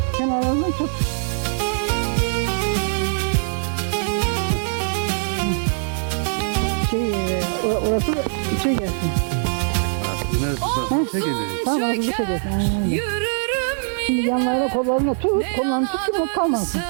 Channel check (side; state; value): left; silent; 56 dB below the other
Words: Kenarlarından tut. Orası da içe gelsin. Neresi? Şey geliyor. Tamam orası dışa gelsin. Aynen öyle. Yürürüm Şimdi yine, yanlarına kollarına tut. Kollarını tut ki not kalmasın.